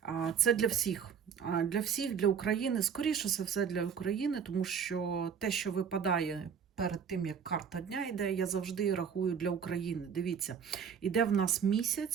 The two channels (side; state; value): left; quieter; 7.1 dB